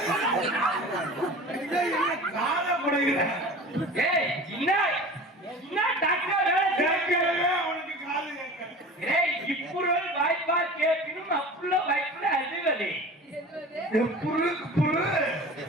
காலப்படுகிற டாக்டர் கேட்கவே அவனுக்கு காது கேட்க. ఇప్పుడు வாய்ப்பா கேட்கணும் அப்புள்ள வாய்ப்புல அதுவலே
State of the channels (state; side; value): normal; both; correlation 0.38